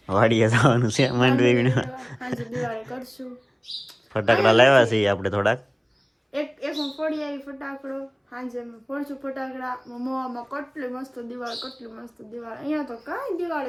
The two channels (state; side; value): identical; both; correlation 1.00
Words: વાડીએ જવાનું છે માંડવી વીણવા. આજે દિવાળી કરશું. ફટાકડા લાવ્યા છીએ આપણે થોડાક. એક હું ફોડી આવી ફટાકડો, સાંજે મેં ફોડશું ફટાકડા. મોવામાં કેટલી મસ્ત દિવાળી, કેટલી મસ્ત દિવાળી. અહીંયા તો કાંઈ